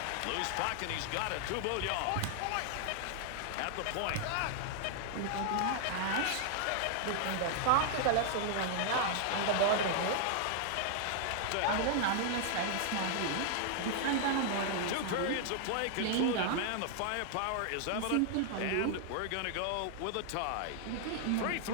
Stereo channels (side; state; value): both; different; correlation 0.00